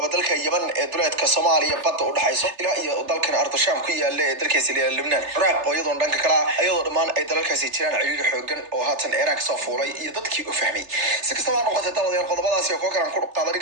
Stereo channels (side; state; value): left; late; 3.3 ms